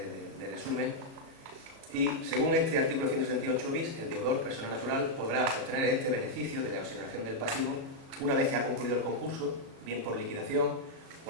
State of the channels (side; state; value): left; late; 37 ms